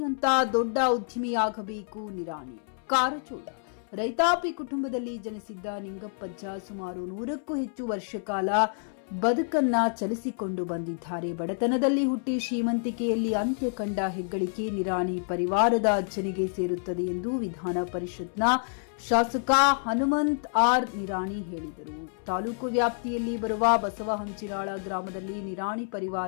ಅಂತ ದೊಡ್ಡ ಉದ್ಯಮಿಯಾಗಬೇಕು ನಿರಾಣಿ. ಕಾರಜೋಳ. ರೈತಾಪಿ ಕುಟುಂಬದಲ್ಲಿ ಜನಿಸಿದ್ದ ನಿಂಗಪ್ಪಜ್ಜ ಸುಮಾರು 100ಕ್ಕೂ ಹೆಚ್ಚು ವರ್ಷ ಕಾಲ ಬದುಕನ್ನ ಚಲಿಸಿಕೊಂಡು ಬಂದಿದ್ದಾರೆ. ಬಡತನದಲ್ಲಿ ಹುಟ್ಟಿ ಶ್ರೀಮಂತಿಕೆಯಲ್ಲಿ ಅಂತ್ಯ ಕಂಡ ಹೆಗ್ಗಳಿಕೆ ನಿರಾಣಿ ಪರಿವಾರದ ಅಜ್ಜನಿಗೆ ಸೇರುತ್ತದೆ ಎಂದು ವಿಧಾನ ಪರಿಷತ್ನ ಶಾಸಕ ಹನುಮಂತ್ ಆರ್ ನಿರಾಣಿ ಹೇಳಿದರು. ತಾಲೂಕು ವ್ಯಾಪ್ತಿಯಲ್ಲಿ ಬರುವ ಬಸವಹಂಚಿನಾಳ ಗ್ರಾಮದಲ್ಲಿ ನಿರಾಣಿ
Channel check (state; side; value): silent; right; 58 dB below the other